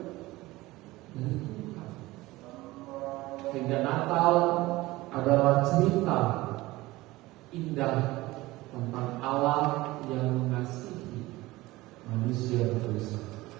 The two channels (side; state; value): left; quieter; 19.2 dB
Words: Dari Tuhan. Sehingga Natal adalah cerita indah tentang Allah yang mengasihi manusia berdosa.